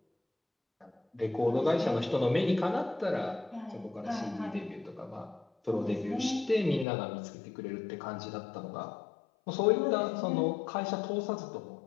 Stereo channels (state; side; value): drops out; right; at 6.9 s